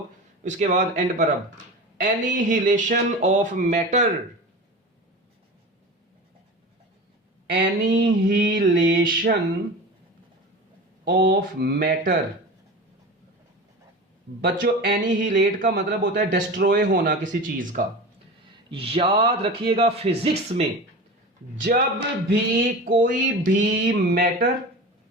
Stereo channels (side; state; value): both; normal; correlation 0.31